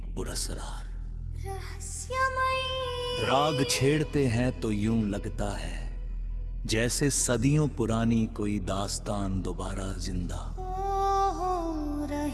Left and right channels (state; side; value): identical; both; correlation 1.00